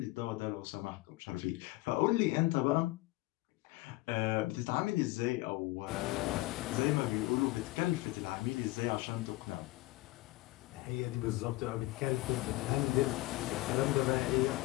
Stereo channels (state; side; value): quieter; right; 19.9 dB